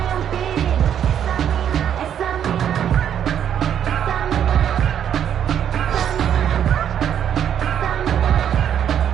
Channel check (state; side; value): quieter; left; 9.3 dB